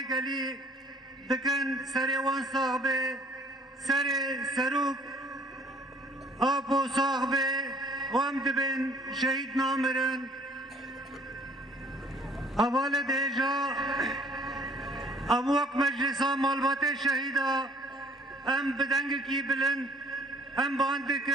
دکن سر وان ساق به سر سروک آبو ساق به و هم دبن شهید نامرن اول دیجا اموک مجلسا مالبات شهیدا ام بدنگ کی بلند ام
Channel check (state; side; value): normal; both; correlation 0.57